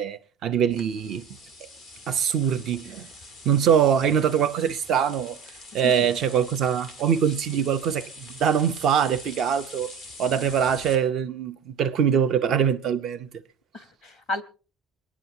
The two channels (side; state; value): left; quieter; 7.5 dB